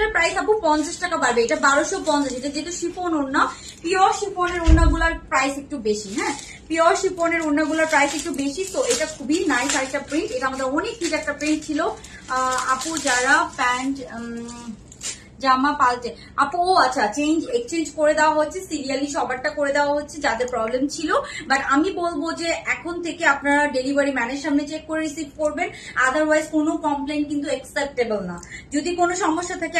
প্রাইস আপু 50 টাকা বাড়বে, এটা 1250। এটা যেহেতু শিফন ওড়না, পিওর শিফনের ওড়নাগুলোর প্রাইস একটু বেশি। হ্যাঁ, পিওর শিফনের ওড়নাগুলোর প্রাইস একটু বেশি। তো এটা খুবই নাইস আরেকটা প্রিন্ট, এটা আমাদের অনেক হিট একটা প্রিন্ট ছিল। আপু যারা প্যান্ট জামা পাল্টে আপু, ও আচ্ছা, এক্সচেঞ্জ করে দেওয়া হচ্ছে, সিরিয়ালি সবারটা করে দেওয়া হচ্ছে যাদের প্রবলেম ছিল। বাট আমি বলবো যে এখন থেকে আপনারা ডেলিভারি ম্যানের সামনে চেক করে রিসিভ করবেন, আদারওয়াইজ কোনো কমপ্লেন কিন্তু অ্যাকসেপ্টেবল না। যদি কোনো সমস্যা থাকে,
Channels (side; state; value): both; identical; correlation 1.00